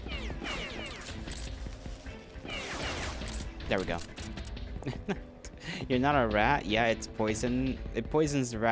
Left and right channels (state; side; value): identical; both; correlation 1.00